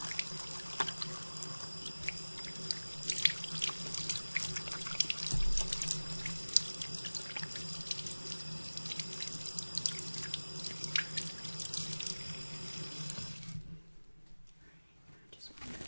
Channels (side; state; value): both; inverted; correlation -1.00